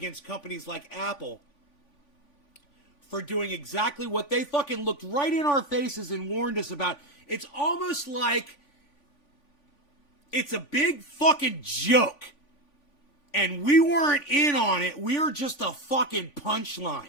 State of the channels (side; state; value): right; late; 3.5 ms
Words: companies like Apple for doing exactly what they fucking looked right in our faces and warned us about. It's almost like it's a big fucking joke. And we weren't in on it. We were just a fucking punchline.